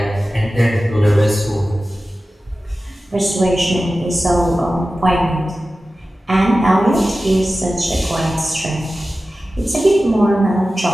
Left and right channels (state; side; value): normal; both; correlation 0.95